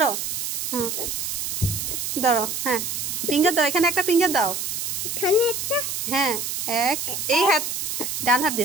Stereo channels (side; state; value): right; noise; hiss, 3 dB below the sound